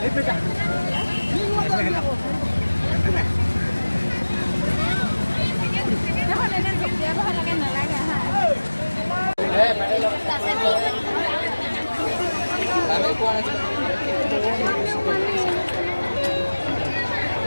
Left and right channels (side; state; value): both; inverted; correlation -1.00